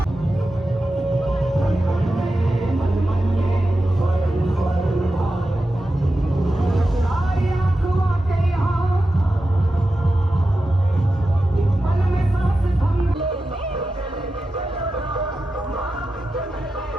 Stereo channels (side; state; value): both; normal; correlation 0.91